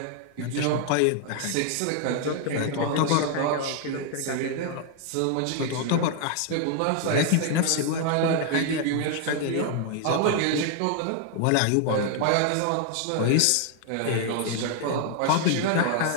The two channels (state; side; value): different; both; correlation 0.00